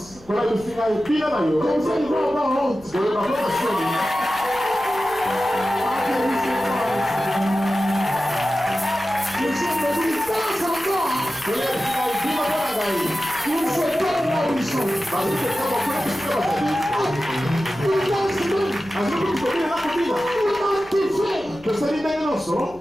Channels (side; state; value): left; noise; rumble, 24 dB below the sound